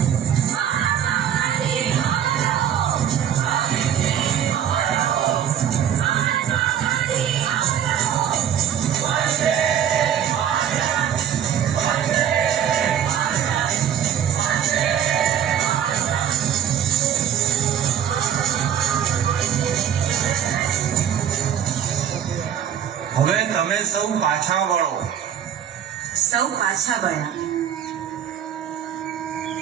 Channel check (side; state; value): left; quieter; 9.4 dB